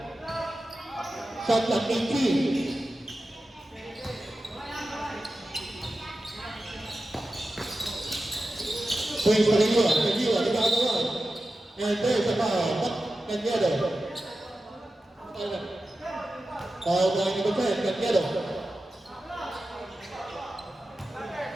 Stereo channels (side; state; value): both; normal; correlation 0.93